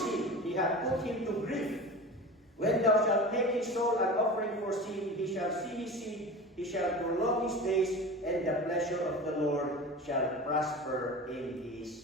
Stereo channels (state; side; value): normal; both; correlation 0.33